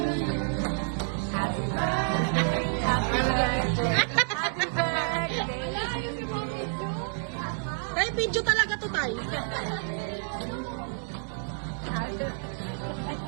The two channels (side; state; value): left; silent; digital silence